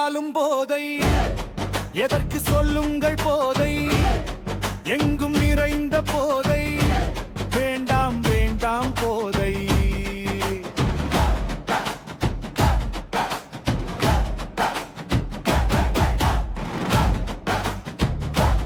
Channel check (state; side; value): identical; both; correlation 1.00